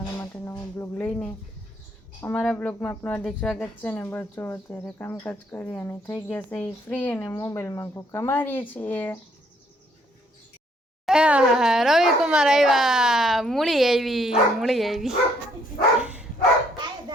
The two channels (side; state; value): both; normal; correlation 0.67